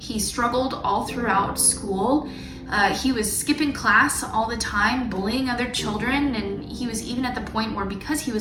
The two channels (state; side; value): identical; both; correlation 1.00